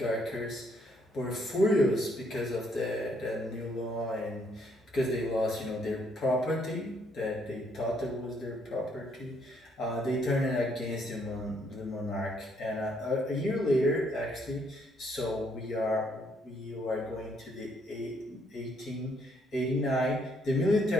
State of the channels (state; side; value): normal; both; correlation 0.70